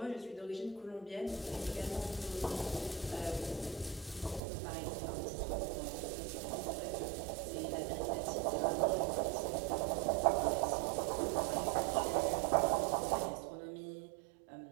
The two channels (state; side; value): drops out; left; at 4.4 s